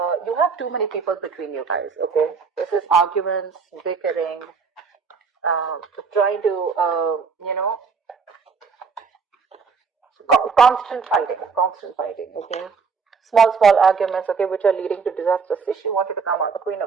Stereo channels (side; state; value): left; quieter; 5.5 dB